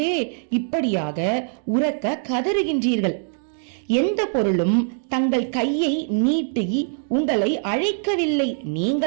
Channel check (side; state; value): left; silent; digital silence